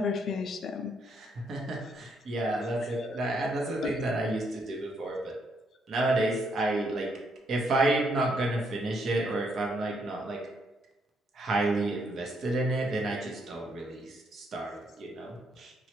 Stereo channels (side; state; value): both; normal; correlation 0.74